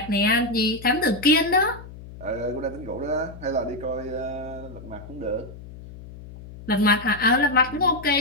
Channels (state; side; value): noise; left; hum, 15 dB below the sound